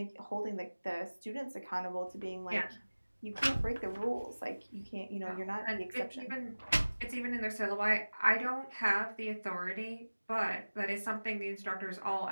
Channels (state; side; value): inverted; both; correlation -1.00